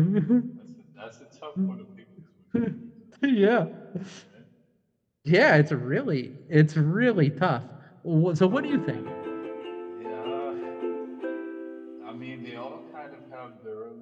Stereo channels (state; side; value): identical; both; correlation 1.00